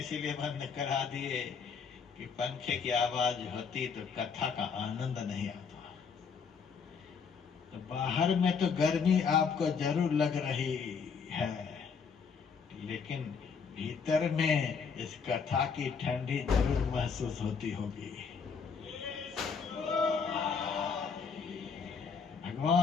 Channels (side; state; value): right; quieter; 5.9 dB